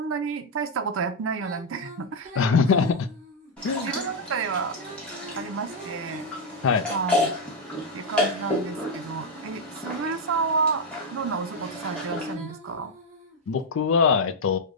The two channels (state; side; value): normal; both; correlation 0.03